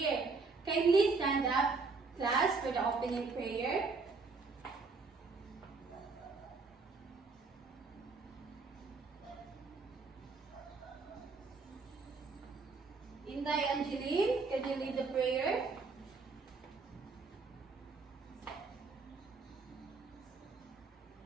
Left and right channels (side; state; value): left; quieter; 4.3 dB